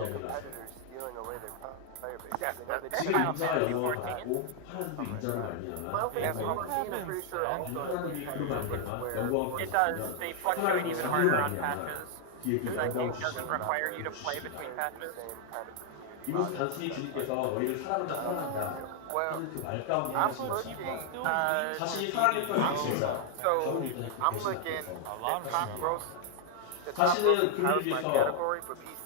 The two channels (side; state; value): both; different; correlation 0.00